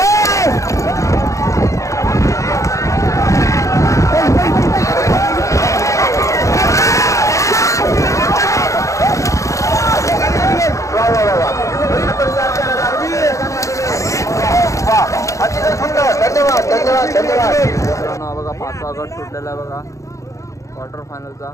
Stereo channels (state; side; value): late; right; 0.15 ms